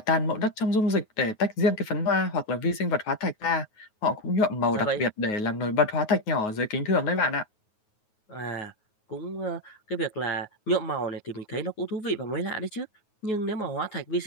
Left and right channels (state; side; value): late; right; 9.4 ms